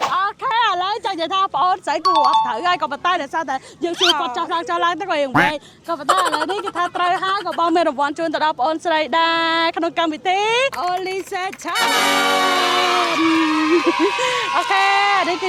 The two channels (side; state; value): both; identical; correlation 1.00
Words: អូខេឥឡូវចង់និយាយថាបងអូនស្រីគួរអត់ត្រូវហើយក៏ប៉ុន្តែដោយសារតែយើងសួរគាត់ចោះឡើងទៅក៏យើងវិញក៏ប៉ុន្តែឥឡូវនេះគេថាត្រូវហើយក៏បងមានរង្វាន់ជូនទៅដល់បងអូនស្រីដែរក្នុងកម្មវិធី Only Say Challenge អូខេនេះគឺ